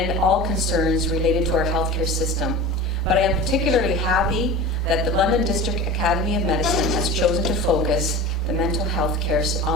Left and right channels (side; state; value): both; normal; correlation 0.33